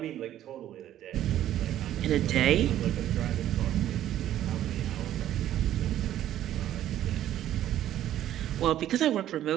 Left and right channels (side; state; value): left; quieter; 12.2 dB